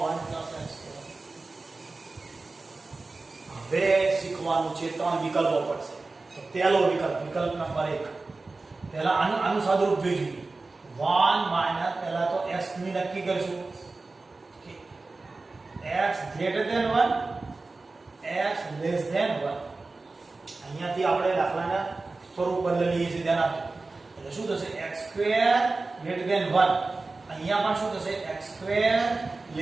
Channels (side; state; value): left; quieter; 3.6 dB